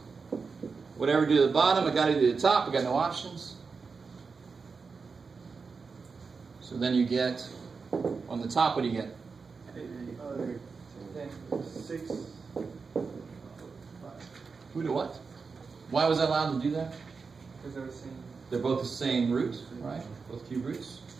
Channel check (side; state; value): left; quieter; 4.9 dB